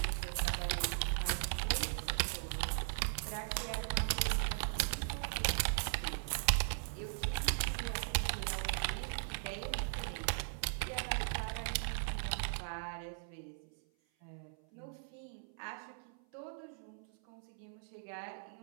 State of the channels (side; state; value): left; silent; 52 dB below the other